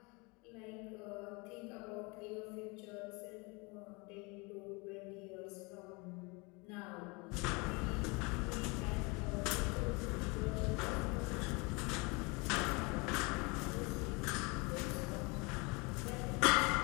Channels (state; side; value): quieter; right; 28.4 dB